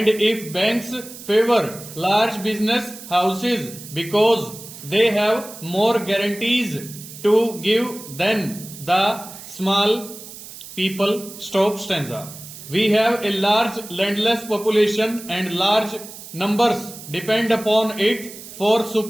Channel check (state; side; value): noise; right; hiss, 15 dB below the sound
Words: if banks favor large business houses because they have more guarantees to give than the small people. Stop. Stanza. We have a large landless population and large numbers depend upon it for